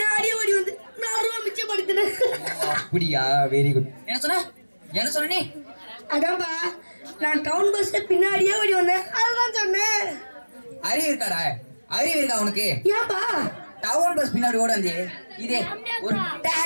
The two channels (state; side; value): inverted; both; correlation -1.00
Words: ஓடி வந்து 4 ரூபா மிச்சப்படுத்தினேன். அப்படியா? Very good. என்ன சொன்ன நீ? அதான்ப்பா, நான் டவுன் பஸ் பின்னாடியே ஓடி வந்தேன், அதுதான் சொன்னேன். அறிவு இருக்காடா? அறிவு இருக்கா உனக்கு? ஏன்பா டவுன் பஸ் பின்னாடி ஓட வந்து இதே ஒரு